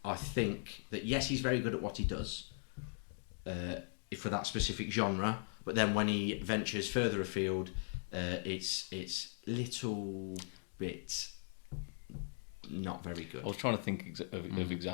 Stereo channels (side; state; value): right; silent; 52 dB below the other